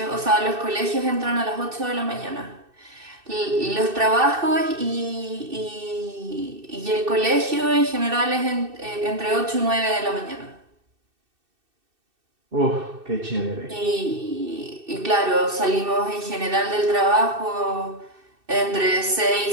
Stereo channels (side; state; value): left; late; 2.6 ms